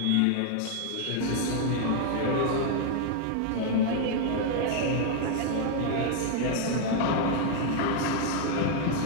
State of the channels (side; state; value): both; different; correlation 0.00